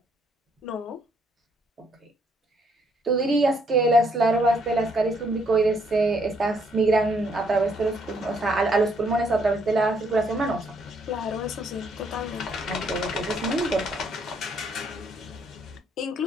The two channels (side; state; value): both; normal; correlation 0.70